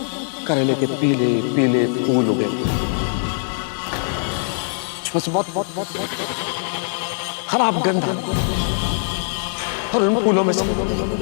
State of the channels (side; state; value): right; silent; 59 dB below the other